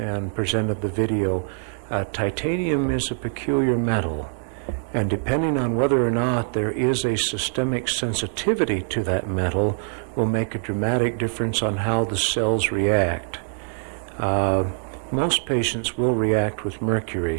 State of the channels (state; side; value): silent; left; digital silence